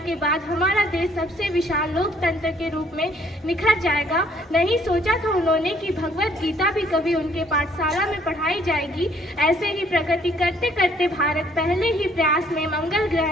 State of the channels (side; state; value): both; normal; correlation 0.63